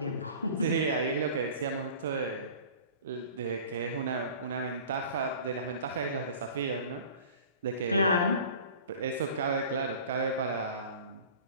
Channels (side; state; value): both; inverted; correlation -0.43